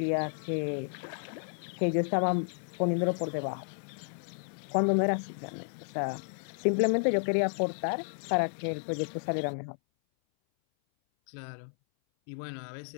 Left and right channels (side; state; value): right; silent; 57 dB below the other